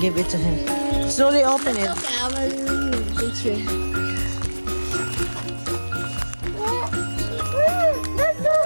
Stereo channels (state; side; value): inverted; both; correlation -1.00